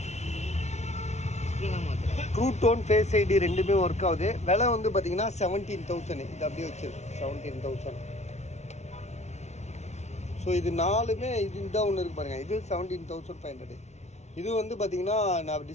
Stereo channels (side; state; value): right; late; 0.32 ms